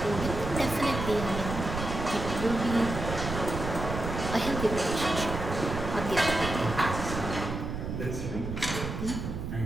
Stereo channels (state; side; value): noise; right; rumble, 5 dB below the sound